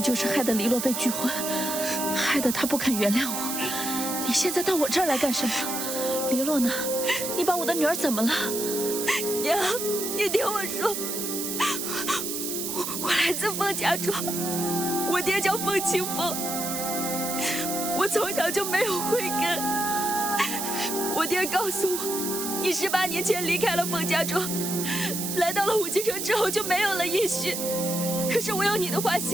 就是害得黎洛被拒婚，害得他不肯原谅我。你现在到我这儿来干什么？黎洛呢？你把我的女儿怎么了？娘，你听我说，我来自凤家庄，我爹叫凤清风，我从小就没有慧根。我爹告诉我，你18年前离开了凤家庄，来到了武京城之后就没有了音讯。可是我有你的画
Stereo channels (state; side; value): noise; right; hiss, 3 dB below the sound